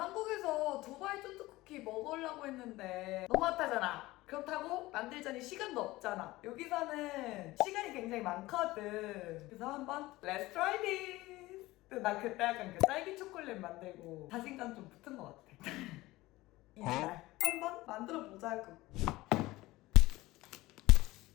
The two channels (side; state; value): right; quieter; 18.9 dB